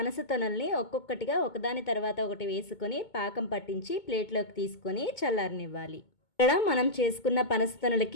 పనస తొనల్ని ఒక్కొక్కటిగా ఒకదాని తర్వాత ఒకటి వేసుకొని పాకం పట్టించి ప్లేట్లోకి తీసుకొని చల్లారనివ్వాలి. ఇక్కడ మనం చేసుకున్న పనస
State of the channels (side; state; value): right; late; 2.2 ms